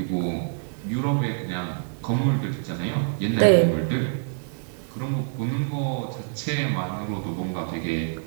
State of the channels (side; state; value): left; silent; digital silence